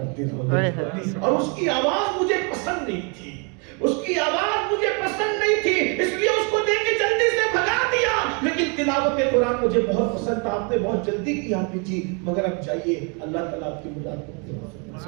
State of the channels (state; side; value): quieter; left; 35.2 dB